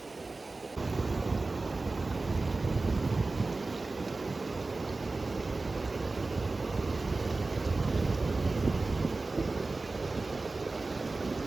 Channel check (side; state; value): left; quieter; 3.5 dB